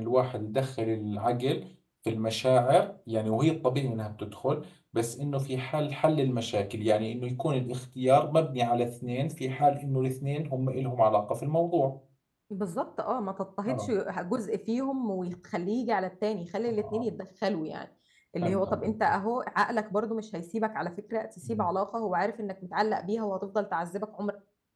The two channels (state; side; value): identical; both; correlation 1.00